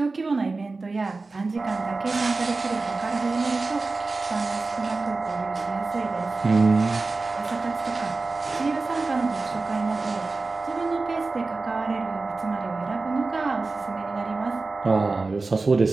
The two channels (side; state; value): left; quieter; 3.7 dB